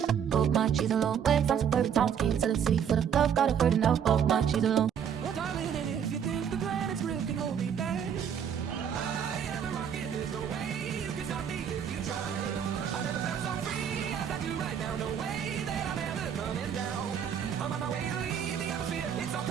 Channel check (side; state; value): left; quieter; 8.2 dB